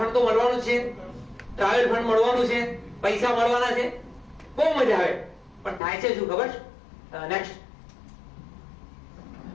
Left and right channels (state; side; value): drops out; right; at 5.8 s